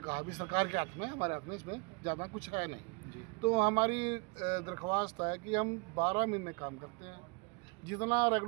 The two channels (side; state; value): left; quieter; 31.5 dB